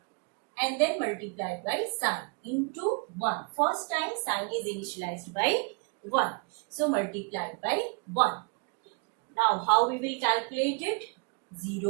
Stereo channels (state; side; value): quieter; left; 36.4 dB